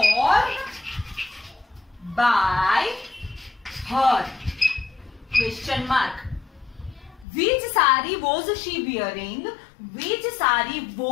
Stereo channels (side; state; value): right; drops out; at 7.2 s